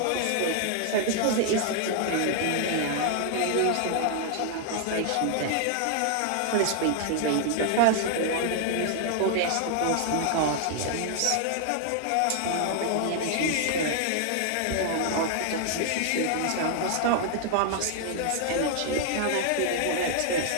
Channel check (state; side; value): different; both; correlation 0.00